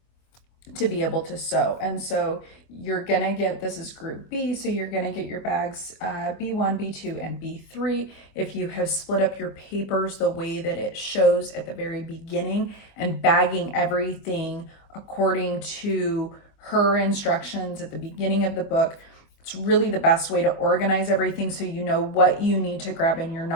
to be able to sew. And so you're gonna get, this is group B, so you're gonna get your bags B1, B2, and B3. If you have split up your papers the way that it shows at the very beginning and bagging everything according to her instructions at the beginning of the book, it's really the best way to organize everything so you know what you need to grab and you're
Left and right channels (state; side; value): late; right; 25 ms